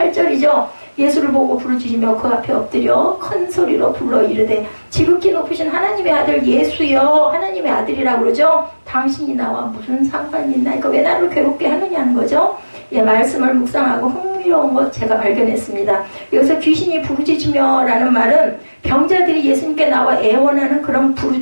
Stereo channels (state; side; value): inverted; both; correlation -1.00